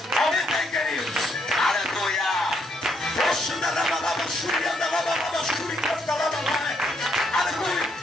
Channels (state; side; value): normal; both; correlation 0.73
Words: Aumenta aí, queridos. Aleluia. Aleluia.